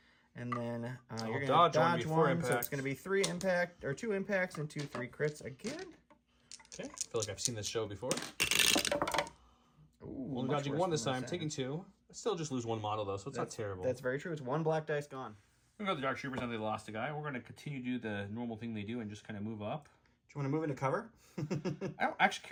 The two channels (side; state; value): both; identical; correlation 1.00